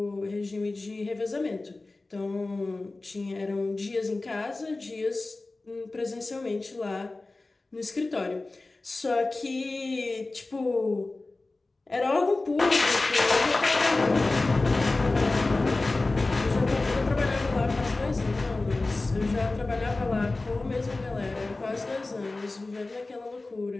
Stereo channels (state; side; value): quieter; right; 3.2 dB